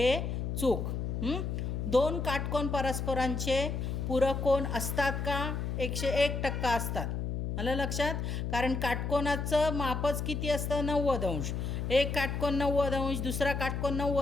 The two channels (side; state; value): left; noise; hum, 2 dB below the sound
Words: चूक. दोन काटकोन परस्परांचे पूरक कोन असतात का? 101% असतात. आलं लक्षात? कारण काटकोनाचं मापच किती असतं? 90 अंश. एक काटकोन 90 अंश, दुसरा काटकोन